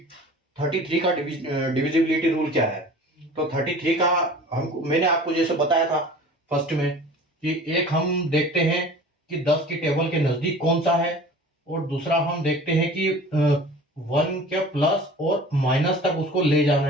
33 का डिविजिबिलिटी रूल क्या है। तो 33 का मैंने आपको जैसे बताया था फर्स्ट में कि एक हम देखते हैं कि 10 की टेबल के नजदीक कौन सा है, और दूसरा हम देखते हैं कि 1 के प्लस और माइनस तक उसको ले जाना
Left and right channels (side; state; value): both; normal; correlation 0.43